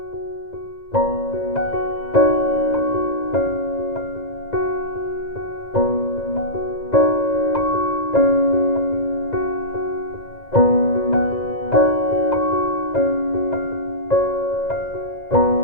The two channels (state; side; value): late; right; 2.0 ms